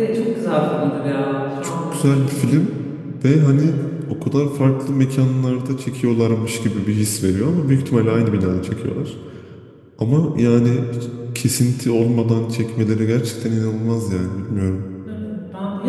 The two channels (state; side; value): identical; both; correlation 1.00